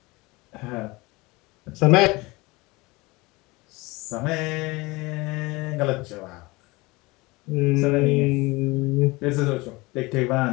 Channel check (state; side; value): quieter; right; 23.3 dB